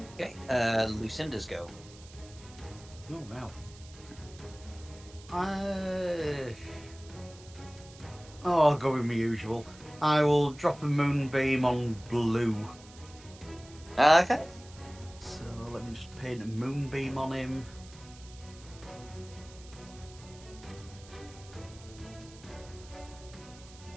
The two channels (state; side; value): noise; right; hiss, 21 dB below the sound